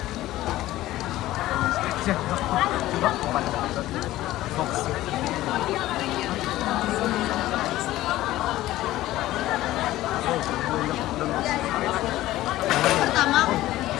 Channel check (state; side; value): quieter; right; 15.7 dB